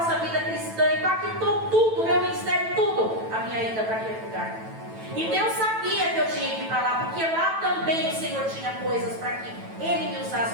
vida cristã, impactou tudo, meu ministério, tudo, a minha ida para aquele lugar. E Deus sabia que eu tinha que ir para lá, porque lá também o Senhor tinha coisas para que Ele me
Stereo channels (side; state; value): left; late; 9.1 ms